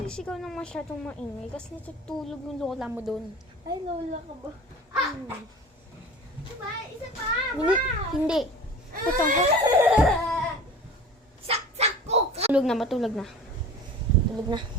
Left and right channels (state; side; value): normal; both; correlation 0.39